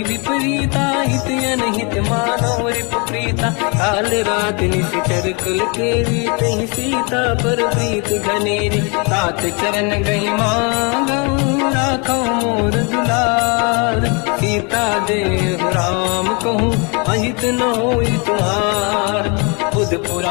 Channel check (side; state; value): right; quieter; 32.7 dB